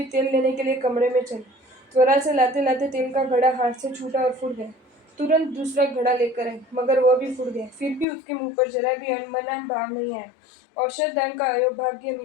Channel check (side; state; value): right; drops out; at 8.1 s